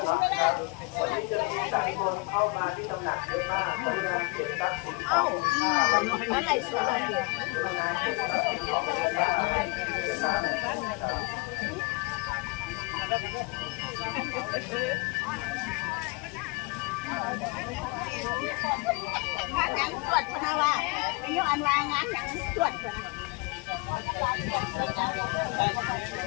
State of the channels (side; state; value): right; quieter; 27.6 dB